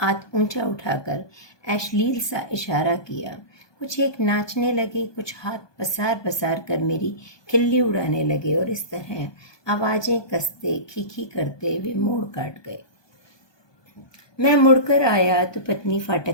ऊंचा उठाकर अश्लील सा इशारा किया। कुछ एक नाचने लगे, कुछ हाथ पसार पसार कर मेरी खिल्ली उड़ाने लगे, और इस तरह आवाजें कसते खीखी करते वे मोड़ काट गए। मैं मुड़कर आया तो पत्नी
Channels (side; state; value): right; late; 1.2 ms